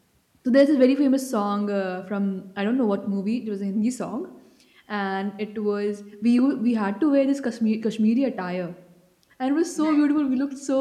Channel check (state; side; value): identical; both; correlation 1.00